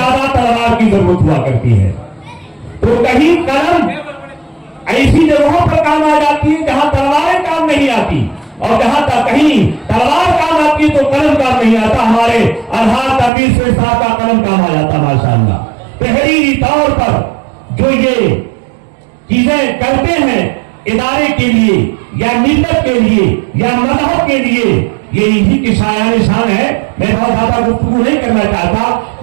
तलवार की जरूरत हुआ करती है। तो कहीं कलम ऐसी जगहों पर काम आ जाती है जहां तलवारें काम नहीं आती, और जहां तक कहीं तलवार काम आती है तो कलम काम नहीं आता। हमारे अलहाज तनवीर शेख साहब का कलम काम आ जाता माशाअल्लाह। तहरीरी तौर पर जो ये चीजें करते हैं इदारे के लिए या मिल्लत के लिए या मजहब के लिए, ये इसी की शायान शान है। मैं बहुत ज्यादा गुफ्तगू नहीं करना चाहता।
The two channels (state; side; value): drops out; left; at 13.3 s